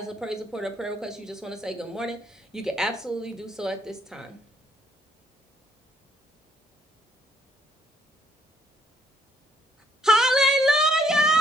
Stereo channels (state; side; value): normal; both; correlation 0.67